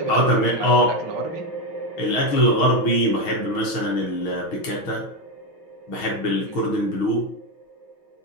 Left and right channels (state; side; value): late; right; 6.3 ms